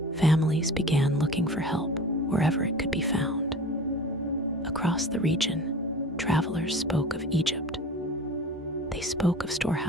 Families began looking for help wherever it could be found. Across the region, travelers spoke of Egypt. They spoke of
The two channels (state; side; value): normal; both; correlation 0.39